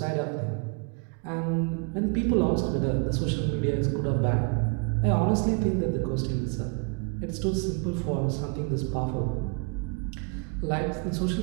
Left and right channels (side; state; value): left; quieter; 33.2 dB